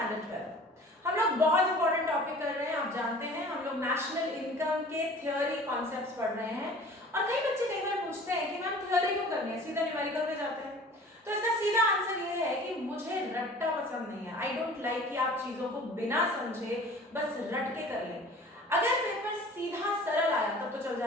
12। हम लोग बहुत इंपॉर्टेंट टॉपिक कर रहे हैं, आप जानते हैं हम लोग नेशनल इनकम के थियोरी कॉन्सेप्ट्स पढ़ रहे हैं। और कई बच्चे कई बार पूछते हैं कि मैम थियोरी क्यों करनी है, सीधा न्यूमेरिकल पे जाते हैं। तो इसका सीधा आंसर ये है कि मुझे रट्टा पसंद नहीं है। आई डोंट लाइक कि आप चीजों को बिना समझे बस रट के कर लें। अगर पेपर सीधा सरल आया तब तो चल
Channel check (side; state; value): both; normal; correlation 0.45